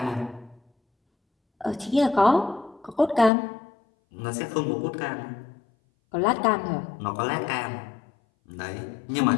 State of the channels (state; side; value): drops out; right; at 3.3 s